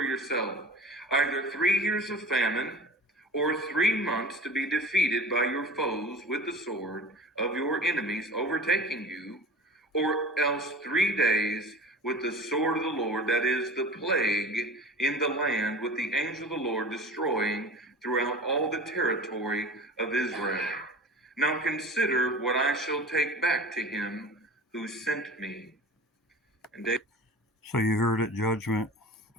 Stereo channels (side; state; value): both; normal; correlation 0.36